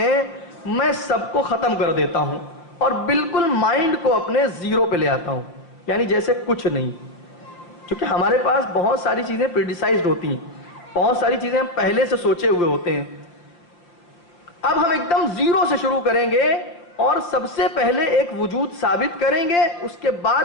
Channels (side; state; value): right; late; 5.8 ms